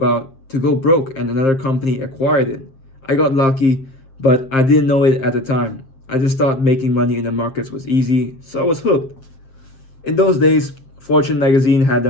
to go broke and another company acquired it. I got lucky, but I didn't know it at the time. I just thought making money in the markets was easy, so I was hooked. In those days, Fortune magazine had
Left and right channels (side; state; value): right; late; 7.6 ms